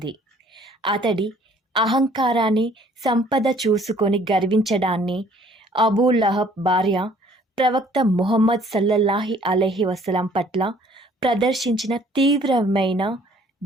అతడి అహంకారాన్ని, సంపద చూసుకొని గర్వించడాన్ని అబూ లహబ్ భార్య ప్రవక్త ముహమ్మద్ సల్లల్లాహు అలైహి వసల్లం పట్ల ప్రదర్శించిన తీవ్రమైన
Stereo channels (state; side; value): normal; both; correlation 0.58